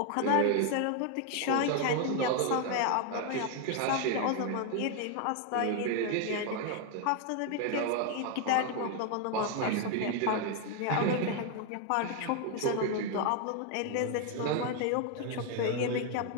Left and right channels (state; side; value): different; both; correlation 0.01